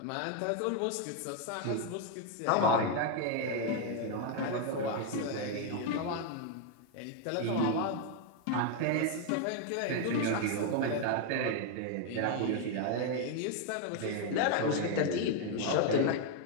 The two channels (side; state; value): both; different; correlation 0.01